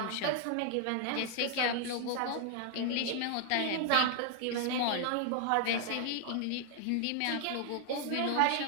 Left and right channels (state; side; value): different; both; correlation 0.00